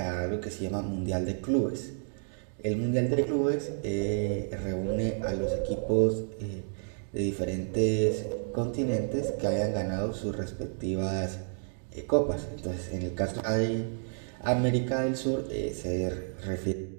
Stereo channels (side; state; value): left; silent; digital silence